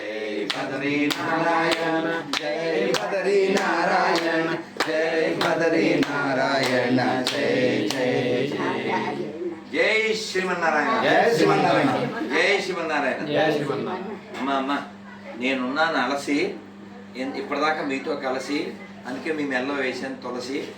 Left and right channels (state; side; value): identical; both; correlation 1.00